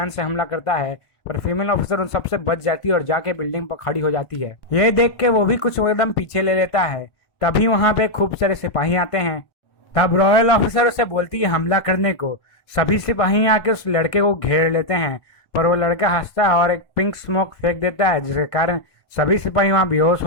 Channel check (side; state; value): right; late; 1.5 ms